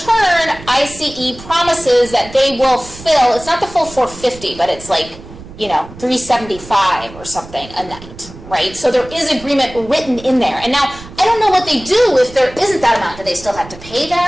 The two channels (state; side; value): noise; right; rumble, 17 dB below the sound